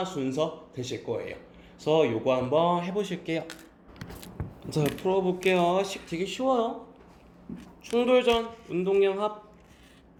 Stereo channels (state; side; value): identical; both; correlation 1.00